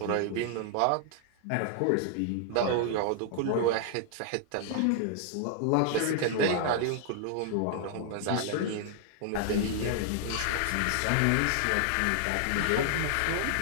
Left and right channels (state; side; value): different; both; correlation 0.00